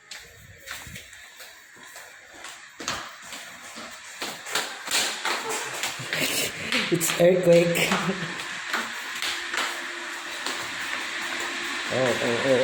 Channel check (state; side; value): identical; both; correlation 1.00